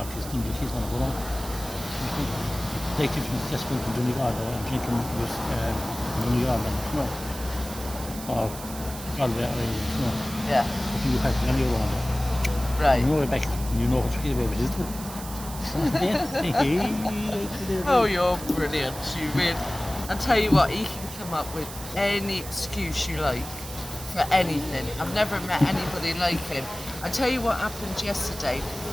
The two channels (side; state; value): right; noise; hiss, 12 dB below the sound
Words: is thinking she's going to go on. Like if you just went to Donegal and drinking with Donegal, no. Or Galway, no. Yeah. You have to go on. Right. You know Rebecca, you know what you're about, isn't it? Oh, you're brilliant. You really. I tell you what, he can come up with any excuse you like for anything. I've never met anybody like him. I tell you what happened yesterday.